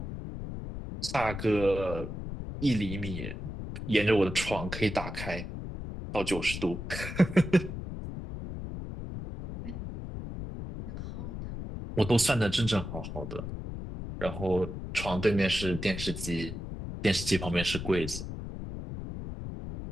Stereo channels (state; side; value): noise; left; rumble, 7 dB below the sound